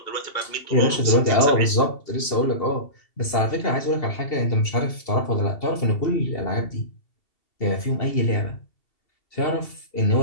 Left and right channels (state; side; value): late; right; 2.7 ms